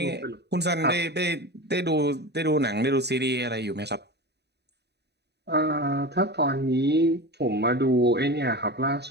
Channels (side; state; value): left; late; 0.49 ms